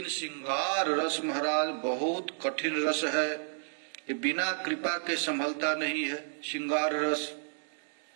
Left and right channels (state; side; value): silent; left; digital silence